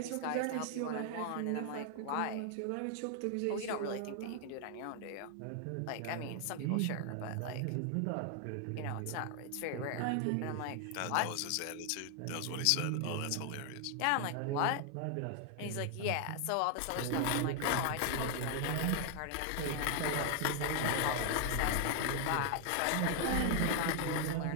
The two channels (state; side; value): different; both; correlation 0.00